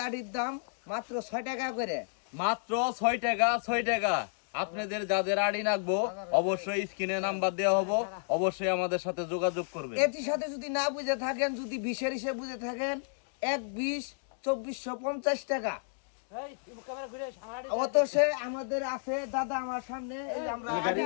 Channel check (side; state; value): right; silent; digital silence